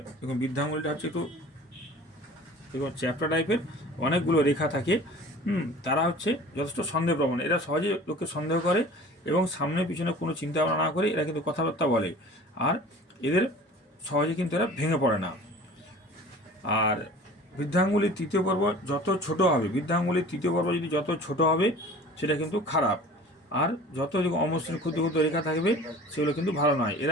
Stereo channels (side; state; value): both; normal; correlation 0.43